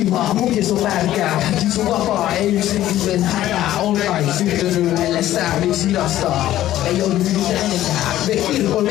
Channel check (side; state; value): right; quieter; 13.6 dB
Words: mukis on märkää. Sun vapaa ei yksinkin hätää. On kai syttynyt ellestään, miksi hidastaa? Ei oo yhdytä enempää. Me kirkon